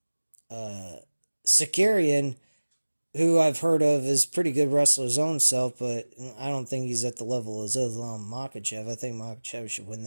Sakarian, who I've heard of, is pretty good wrestler his own self, but I don't think he's at the level of Islam Makhachev. I think Makhachev should win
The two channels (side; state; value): both; inverted; correlation -1.00